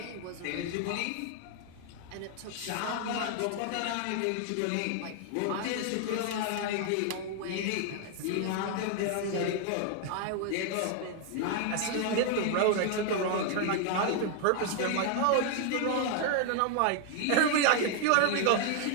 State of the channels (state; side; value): different; both; correlation 0.00